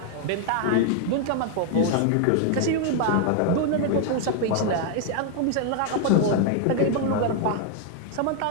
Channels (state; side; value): different; both; correlation 0.00